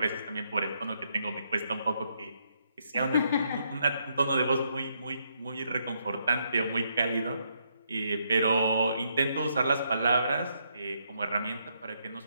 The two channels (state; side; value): inverted; both; correlation -0.76